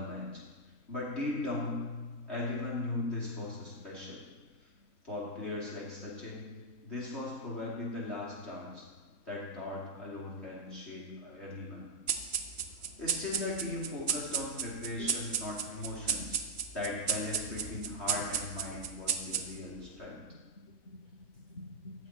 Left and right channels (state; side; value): late; right; 3.1 ms